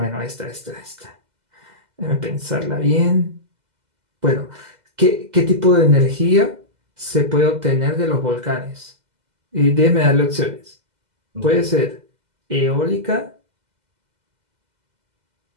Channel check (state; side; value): late; left; 2.0 ms